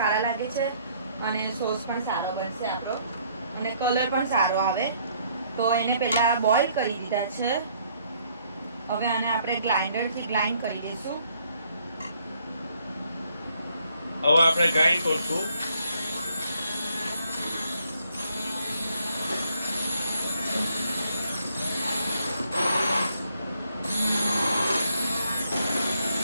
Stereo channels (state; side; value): inverted; both; correlation -0.67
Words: લાગે છે અને સોસ પણ સારો બનશે આપણો અને કલર પણ સારો આવે. તો એને પહેલાં બોઇલ કરી દીધા છે. હવે આને આપણે ગ્રાઇન્ડરથી ગ્રાઇન્ડ કરી દઈશું. હવે આપણે ગ્રાઇન્ડ કરશું.